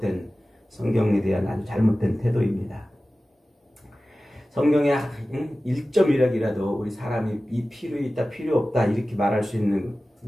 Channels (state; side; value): normal; both; correlation 0.96